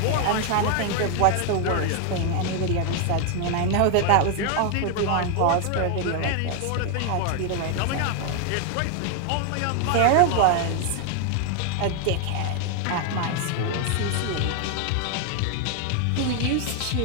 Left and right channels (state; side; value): different; both; correlation 0.00